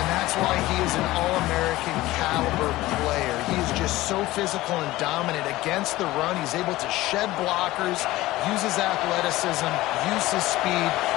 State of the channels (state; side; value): quieter; right; 17.6 dB